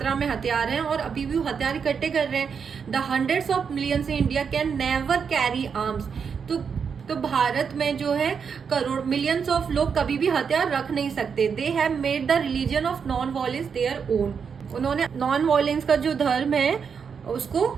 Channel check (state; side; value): quieter; left; 6.4 dB